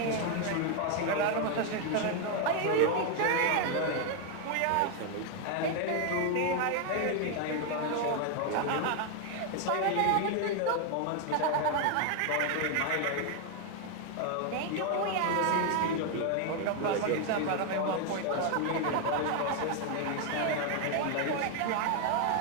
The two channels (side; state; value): both; different; correlation 0.01